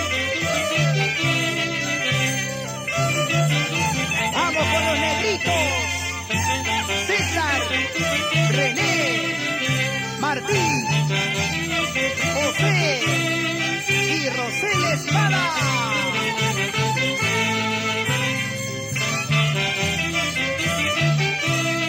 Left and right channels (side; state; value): both; identical; correlation 1.00